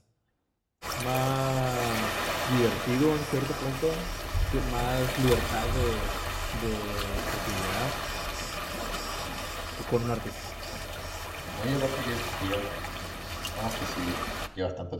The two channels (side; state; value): both; identical; correlation 1.00